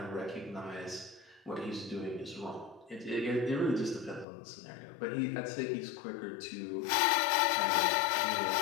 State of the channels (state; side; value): drops out; right; at 4.2 s